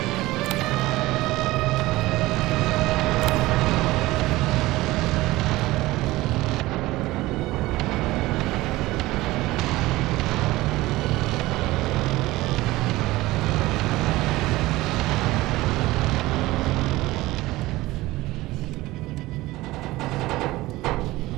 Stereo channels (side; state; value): left; quieter; 18.7 dB